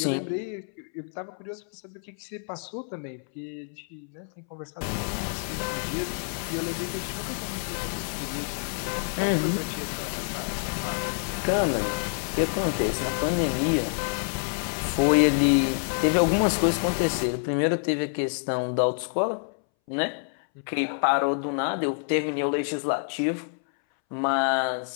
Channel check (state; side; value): silent; right; 60 dB below the other